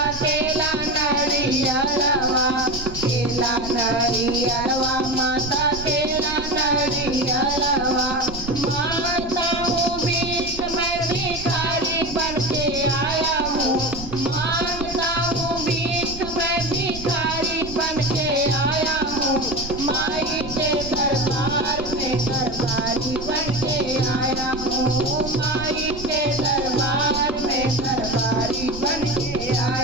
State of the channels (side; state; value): right; noise; rumble, 12 dB below the sound